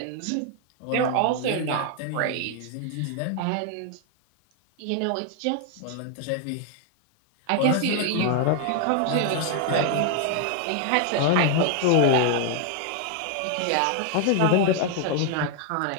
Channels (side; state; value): both; different; correlation 0.00